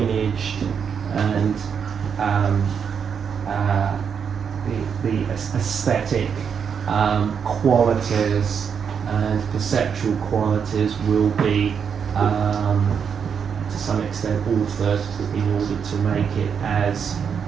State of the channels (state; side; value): quieter; left; 7.0 dB